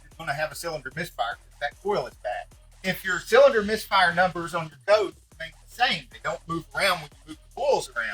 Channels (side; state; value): both; identical; correlation 1.00